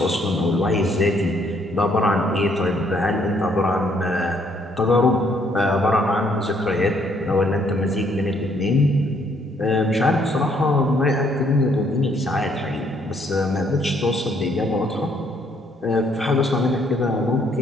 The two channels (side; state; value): both; normal; correlation 0.68